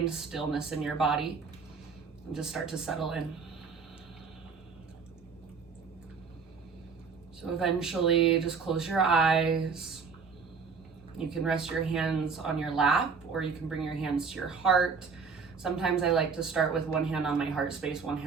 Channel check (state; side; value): quieter; left; 5.4 dB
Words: stillness in your body and just start to settle in. So eventually just close your eyes. You can rest your hands on your lap, or you can bring your hands to your heart. Sometimes I like to start with one hand on my heart space, one